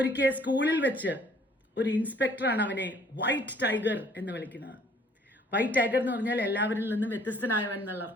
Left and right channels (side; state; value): both; normal; correlation 0.59